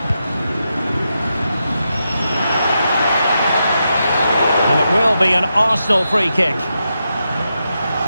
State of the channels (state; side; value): inverted; both; correlation -0.86